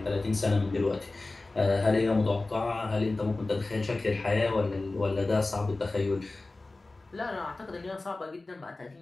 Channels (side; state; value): right; quieter; 3.2 dB